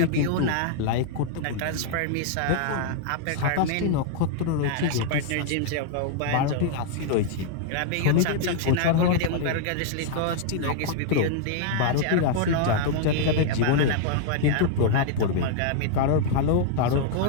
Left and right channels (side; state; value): both; different; correlation 0.00